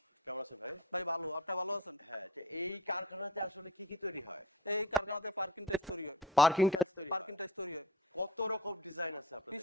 কেমন আছেন ভাই? ভাই ভালো, আপনি ভালো আছেন? হ্যাঁ, এই কারখানাতে আসলে কি কি তৈরি হয়? এই কারখানাতে পার্কিং টাইলস তৈরি হয়। পার্কিং টাইলস তৈরি হয়। পার্কিং টাইলস তৈরি হয়। কত রকম ডিজাইন আছে আপনাদের?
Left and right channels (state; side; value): normal; both; correlation 0.34